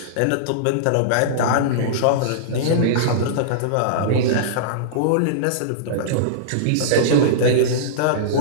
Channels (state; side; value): different; both; correlation -0.03